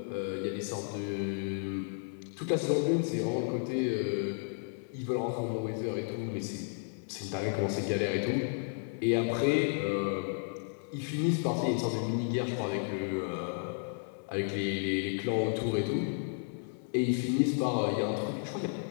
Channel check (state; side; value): silent; right; 56 dB below the other